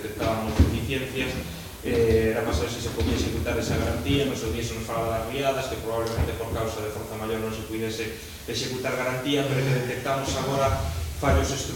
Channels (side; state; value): both; identical; correlation 1.00